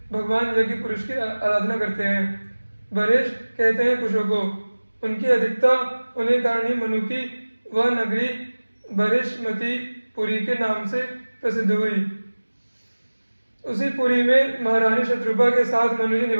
भगवान यज्ञ पुरुष की आराधना करते हैं। बरेश कहते हैं कुशों को। उनकी अधिकता होने कारण ही मनु की वह नगरी बृहस्पति पुरी के नाम से प्रसिद्ध हुई। उसी पुरी में महारानी शत्रुपा के साथ मनु जी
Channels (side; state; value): both; inverted; correlation -1.00